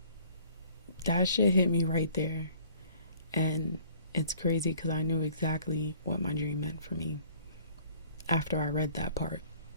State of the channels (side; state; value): both; inverted; correlation -0.54